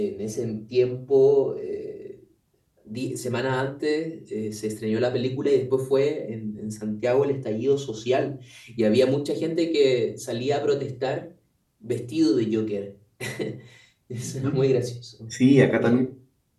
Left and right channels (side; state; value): both; identical; correlation 1.00